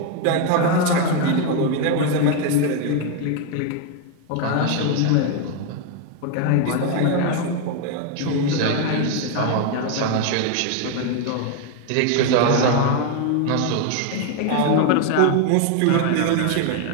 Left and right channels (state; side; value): different; both; correlation 0.01